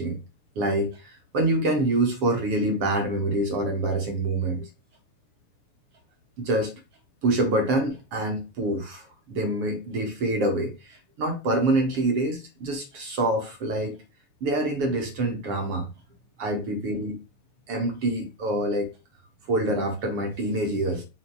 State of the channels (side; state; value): left; late; 7.3 ms